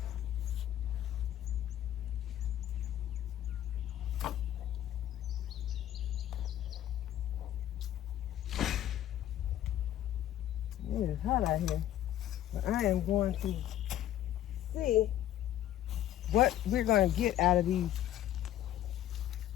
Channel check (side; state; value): right; quieter; 12.2 dB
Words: It is hot out here, but I am going to see what we're going to get out of these